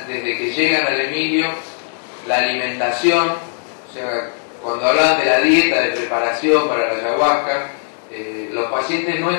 desde que llegan al Emilio, la alimentación, o sea, cuando hablaban de la dieta de preparación para la ayahuasca, los pacientes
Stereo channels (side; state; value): right; silent; 67 dB below the other